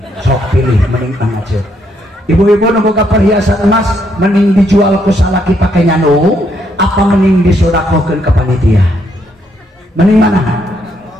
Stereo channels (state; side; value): normal; both; correlation 0.74